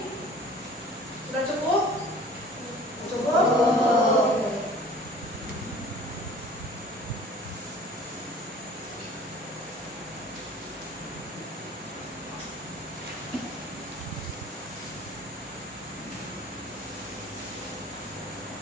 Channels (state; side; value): normal; both; correlation 0.47